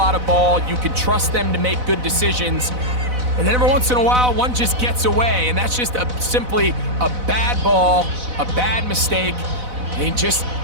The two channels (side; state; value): left; late; 4.0 ms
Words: of ball. You can trust them to make good decisions. And then every once in a while, one just gets away, and that's just simply a bad ball, a bad mistake. And